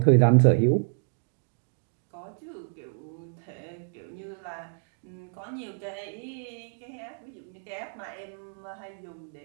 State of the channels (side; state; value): left; silent; digital silence